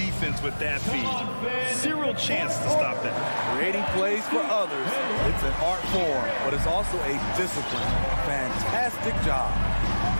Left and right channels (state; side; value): inverted; both; correlation -1.00